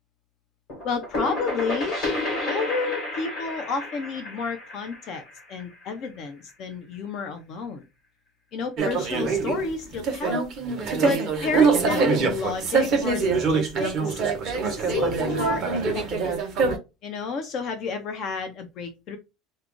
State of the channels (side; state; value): both; normal; correlation 0.42